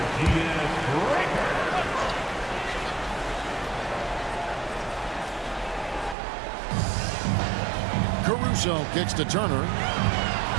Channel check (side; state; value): left; drops out; at 6.2 s